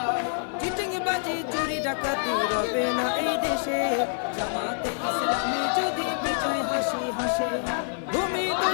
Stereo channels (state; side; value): silent; right; digital silence